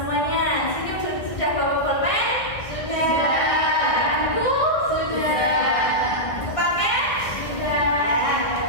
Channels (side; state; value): right; late; 1.8 ms